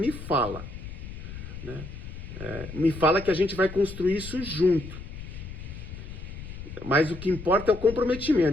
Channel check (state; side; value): noise; left; rumble, 11 dB below the sound